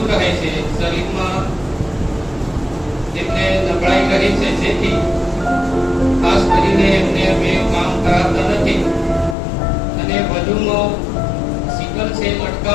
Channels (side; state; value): right; drops out; at 9.3 s